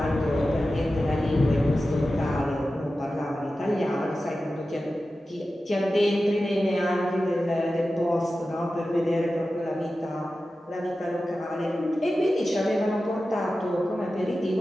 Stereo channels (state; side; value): normal; both; correlation 0.94